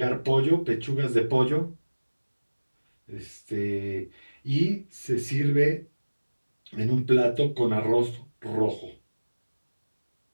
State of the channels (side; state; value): both; inverted; correlation -1.00